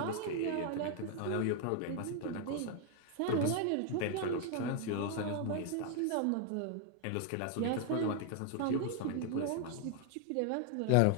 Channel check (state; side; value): different; both; correlation 0.00